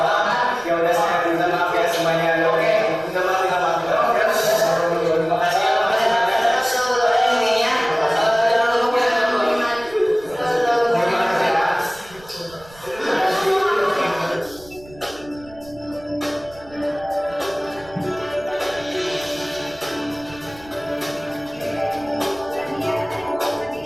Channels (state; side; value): noise; right; rumble, 23 dB below the sound